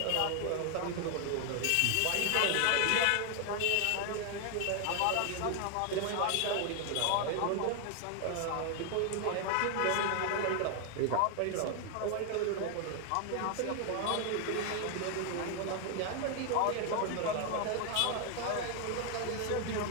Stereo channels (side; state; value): both; different; correlation 0.00